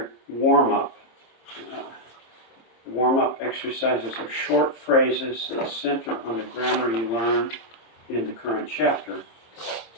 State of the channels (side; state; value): right; late; 26 ms